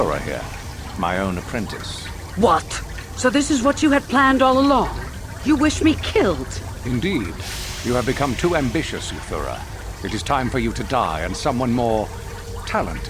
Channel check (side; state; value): both; identical; correlation 1.00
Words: here, my own apprentice. What? So this is what you had planned all along? You wish me killed? Indeed. You have become too ambitious, Euthura. It is time for you to die and someone more